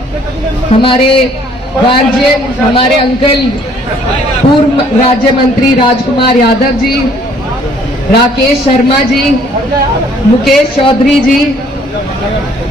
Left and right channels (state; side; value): normal; both; correlation 0.60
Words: हमारे गार्जियन हमारे अंकल पूर्व राज्य मंत्री राजकुमार यादव जी, राकेश शर्मा जी, मुकेश चौधरी जी,